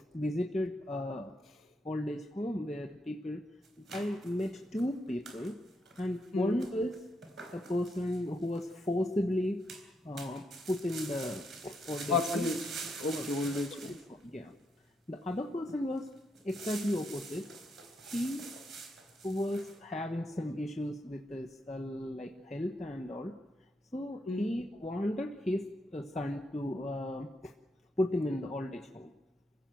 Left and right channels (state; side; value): normal; both; correlation 0.80